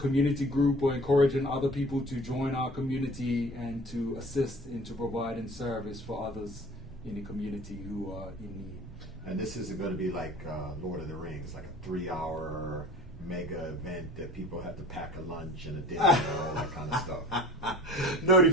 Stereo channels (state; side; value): normal; both; correlation 0.44